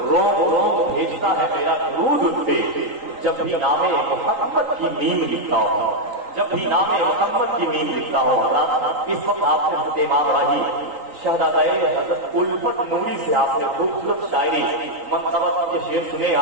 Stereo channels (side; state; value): left; late; 3.8 ms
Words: روم روم بھیجتا ہے میرا درود ان پہ جب بھی نام محمد کی میم لکھتا ہوں جب بھی نام محمد کی میم لکھتا ہوں اس وقت آپ نے امام راہی شہزادہ حضرت الفت نوری سے آپ نے خوبصورت شاعری منصبت کے شعر سنے